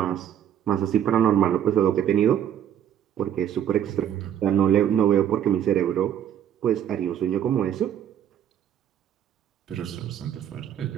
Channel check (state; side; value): quieter; left; 9.9 dB